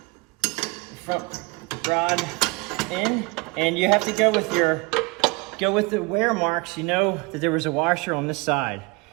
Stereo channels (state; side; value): quieter; left; 27.1 dB